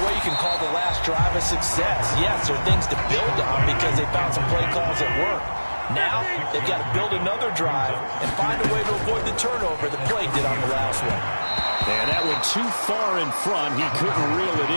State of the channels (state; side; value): inverted; both; correlation -1.00